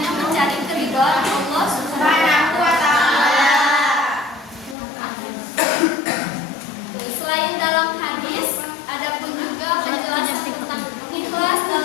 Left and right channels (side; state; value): right; drops out; at 4.8 s